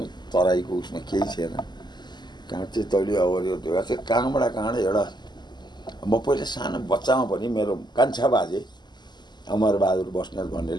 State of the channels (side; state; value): right; late; 0.21 ms